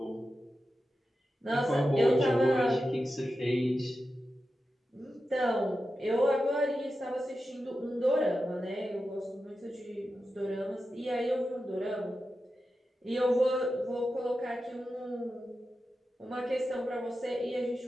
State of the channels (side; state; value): both; normal; correlation 0.91